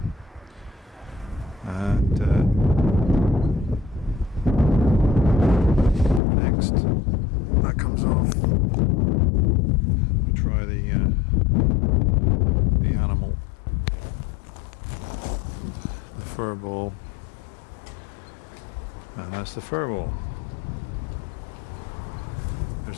and next that comes off. We'll try the animal, the furball, and that's the furball.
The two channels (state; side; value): drops out; right; at 6.2 s